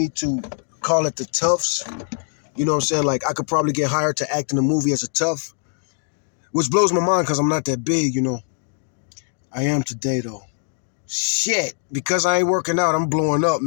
to call it the toughs. You know what I'm saying? Like, I could probably get hired to act in the movie as a tough, which blows my mind because I'm not that big, you know. I am today, though. Shit. Because I ain't working out, I'm blowing up,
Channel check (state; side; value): silent; right; 59 dB below the other